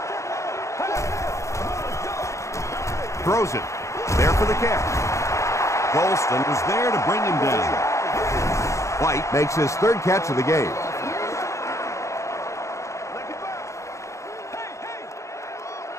Throws it. There for the catch. Golston was there to bring him down. White makes his 3rd catch of the game.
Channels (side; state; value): right; late; 0.15 ms